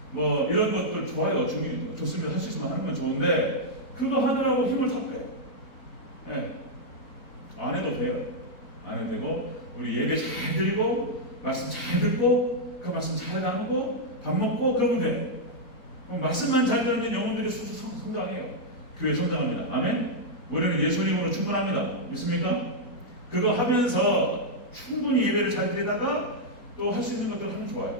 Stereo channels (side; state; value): right; late; 4.1 ms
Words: 뭐 이런 것들 좋아요. 좋습니다. 할 수 있으면 하는 건 좋은데 그거 하느라고 힘을 다 빼요. 네. 안 해도 돼요. 안 해도 되고 우리 예배 잘 드리고 말씀 잘 듣고 그 말씀 잘 나누고 밥 먹고 그러면 돼. 그럼 말씀만 잘 들으면 영혼들이 성장해요. 교회 성장합니다. 아멘. 우리는 예수님으로 충분합니다. 믿습니까? 그거 하면서 충분히 예배를 잘 드리다가 또 할 수 있는 것들 하면